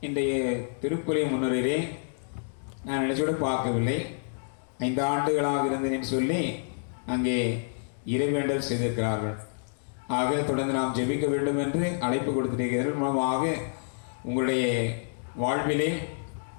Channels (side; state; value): right; silent; digital silence